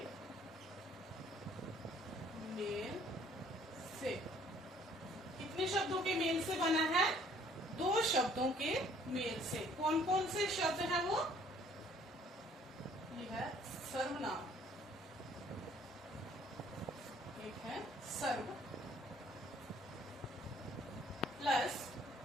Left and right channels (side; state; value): both; normal; correlation 0.59